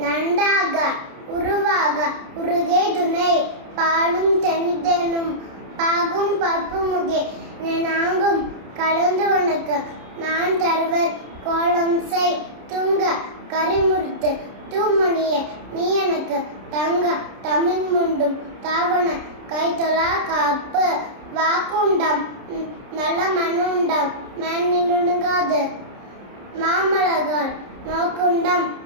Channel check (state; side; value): late; left; 30 ms